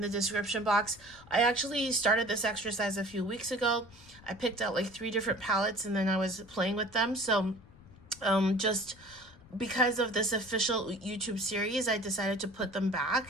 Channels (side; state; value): left; noise; rumble, 24 dB below the sound